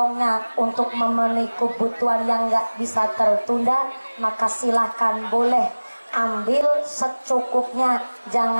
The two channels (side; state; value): both; inverted; correlation -1.00